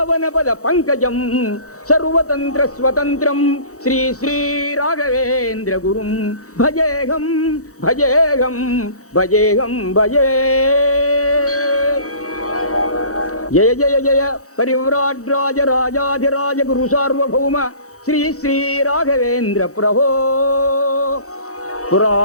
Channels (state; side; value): late; right; 0.65 ms